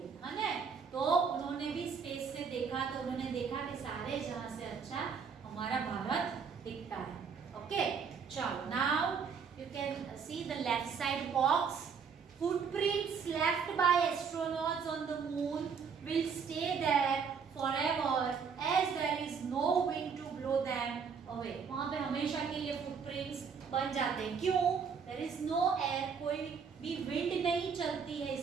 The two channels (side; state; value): left; quieter; 6.2 dB